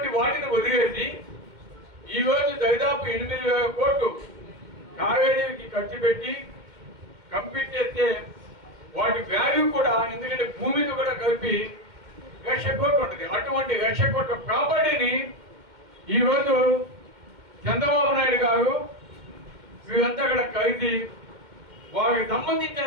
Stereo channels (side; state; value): left; late; 2.1 ms